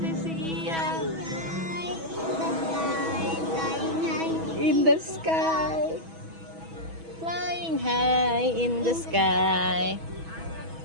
Iya. In the sky. Flying high in the sky.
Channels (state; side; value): late; left; 6.2 ms